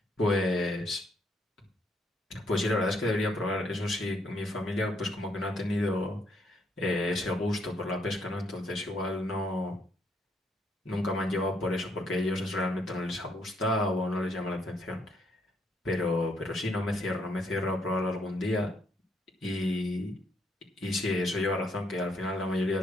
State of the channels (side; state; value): both; normal; correlation 0.72